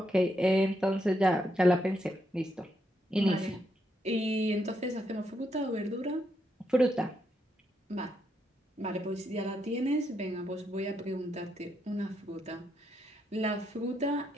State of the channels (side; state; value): both; normal; correlation 0.79